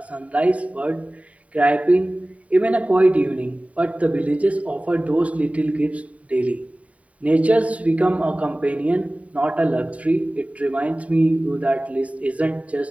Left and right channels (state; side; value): late; left; 0.067 ms